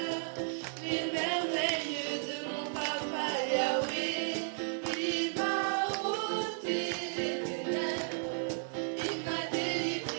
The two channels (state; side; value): silent; left; 55 dB below the other